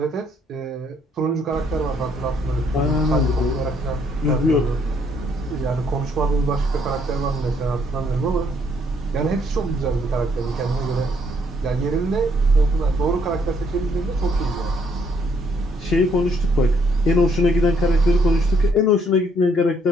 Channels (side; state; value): both; normal; correlation 0.69